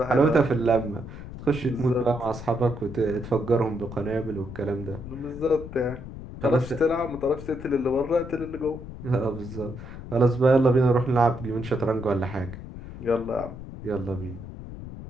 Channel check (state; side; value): noise; left; rumble, 12 dB below the sound